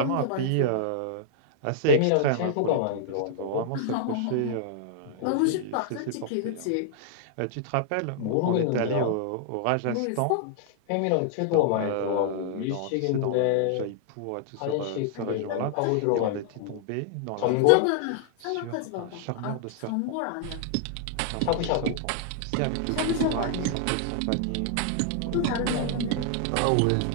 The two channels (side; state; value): both; different; correlation -0.01